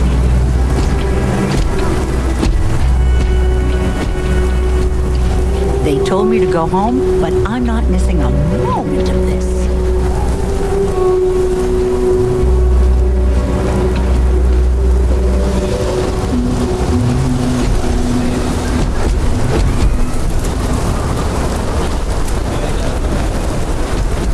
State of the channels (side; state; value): both; identical; correlation 1.00